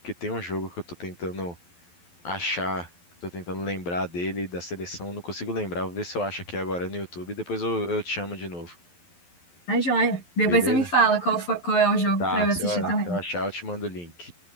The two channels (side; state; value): right; late; 11 ms